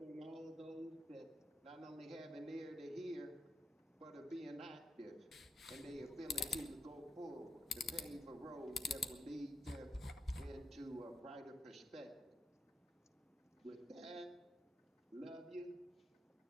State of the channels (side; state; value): both; normal; correlation 0.83